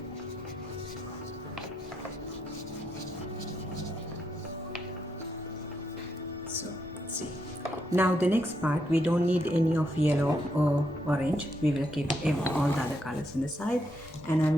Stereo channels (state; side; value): normal; both; correlation 0.79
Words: So see, now the next part, we don't need any of yellow or orange. We will keep all the other colors in the side, and